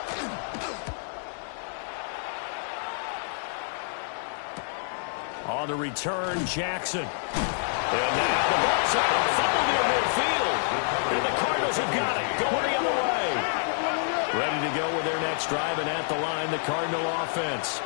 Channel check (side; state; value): right; silent; digital silence